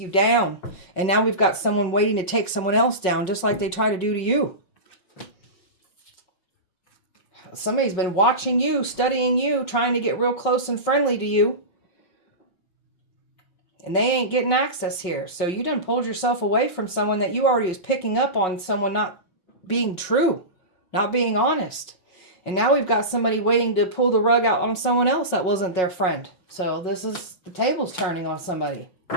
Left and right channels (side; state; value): right; late; 5.5 ms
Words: down. And now we've got someone waiting to take someone else down, just like they try to do to you. Somebody's been watching you, studying you, trying to get real close and friendly to you. And they ain't getting access here. So you done pulled yourself away from someone that you already was picking up on someone not being true, not being honest. And now we've got somebody waiting to pull the rug out on someone else that wasn't their friend. So this is, the table's turning on somebody.